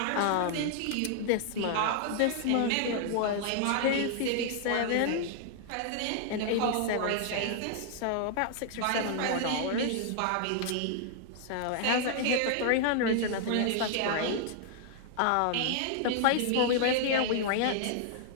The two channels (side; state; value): both; different; correlation 0.00